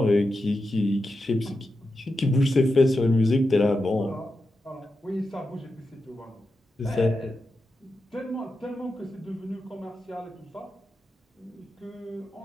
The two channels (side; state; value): both; normal; correlation 0.89